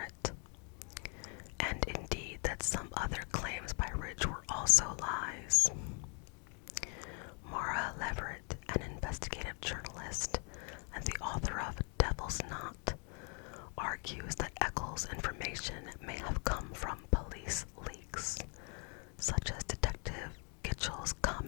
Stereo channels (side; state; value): right; quieter; 37.8 dB